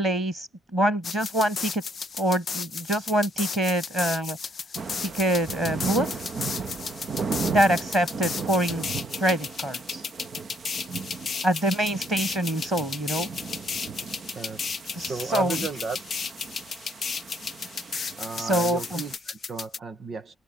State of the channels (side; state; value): both; normal; correlation 0.68